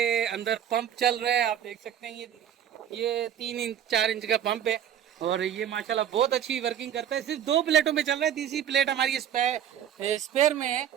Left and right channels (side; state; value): left; quieter; 10.0 dB